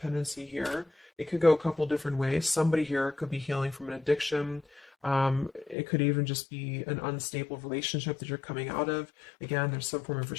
here. It could go a couple different ways. Somebody here could be healing from an addiction. It could even just be an unstable relationship that you're coming out of. Again, there's some form of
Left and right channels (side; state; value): right; drops out; at 5.8 s